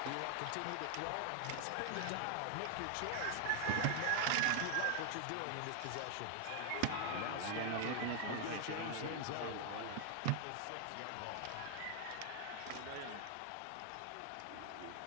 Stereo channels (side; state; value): both; different; correlation 0.00